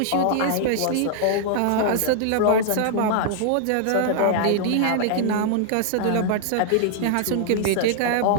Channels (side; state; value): both; different; correlation -0.01